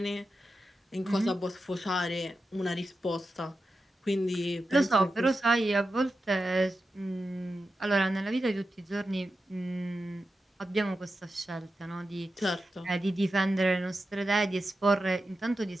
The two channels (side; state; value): both; normal; correlation 0.91